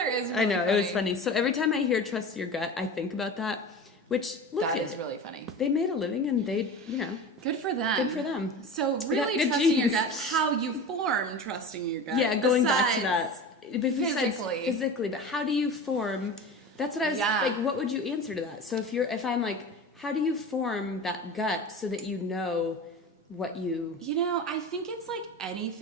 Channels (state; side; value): normal; both; correlation 0.32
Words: is really I know, funny. it was funny. So every time I hear trust your gut, I think about that, which, look, That is really funny. they made a living and they, Good for them. good for them. So got really good trusting your genes. gut, how you form trusting your gut. Yeah, going back to besides that. Besides physically, but how do you form, that's what I was, like, what would you answer to that? So if I'm like, how do you form that gut so that you know what you... I think it's like